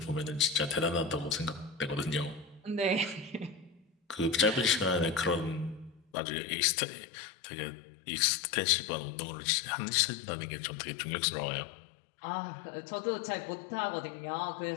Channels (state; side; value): drops out; right; at 6.0 s